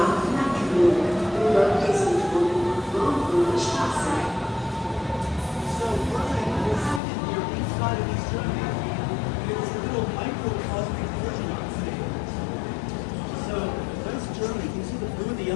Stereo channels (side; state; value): right; drops out; at 7.0 s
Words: Germany, can you see the blue, the